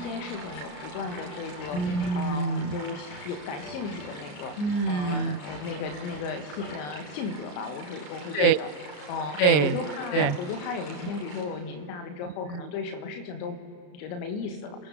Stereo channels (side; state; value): right; late; 34 ms